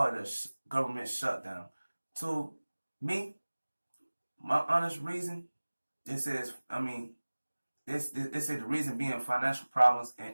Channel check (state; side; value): inverted; both; correlation -1.00